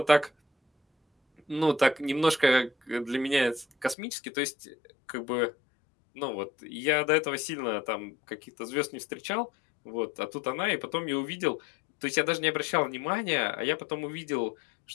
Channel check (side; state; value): right; drops out; at 4.0 s